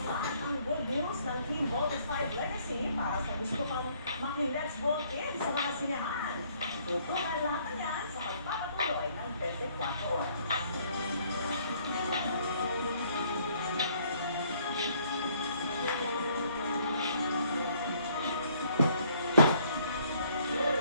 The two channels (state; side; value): inverted; both; correlation -0.64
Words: At ang good news ng Team Voltes 5 Legacy para sa gusto pang maki-let's vote in sa mga sinehan. Tutunan lahat yan sa pagpapatuloy ng 24 oras.